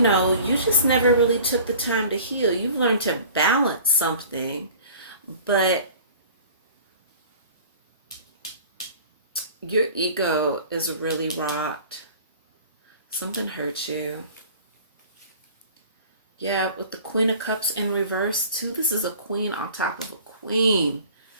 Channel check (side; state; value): both; inverted; correlation -0.45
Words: you just never really took the time to heal. You've learned to balance something, but your ego is really rocked. Something hurt you. Yeah, with the Queen of Cups in reverse too. This is a queen on top of a queen.